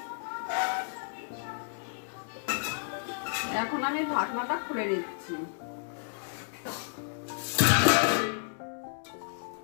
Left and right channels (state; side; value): silent; right; digital silence